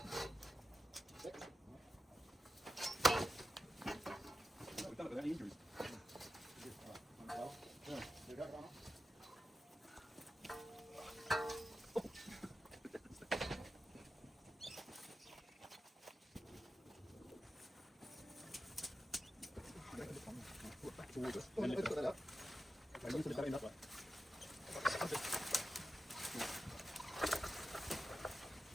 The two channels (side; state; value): both; normal; correlation 0.91